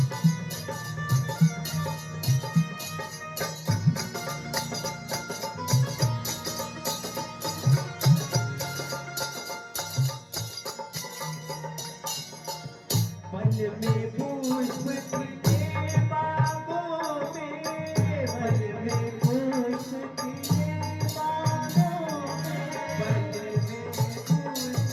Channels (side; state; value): both; identical; correlation 1.00